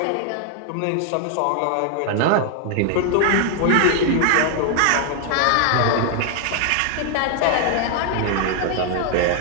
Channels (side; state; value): both; different; correlation 0.00